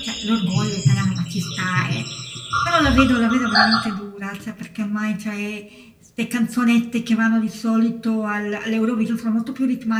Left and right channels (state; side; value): identical; both; correlation 1.00